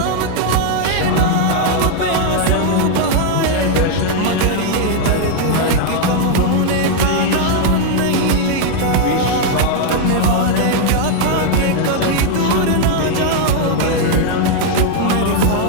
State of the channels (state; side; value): different; both; correlation 0.00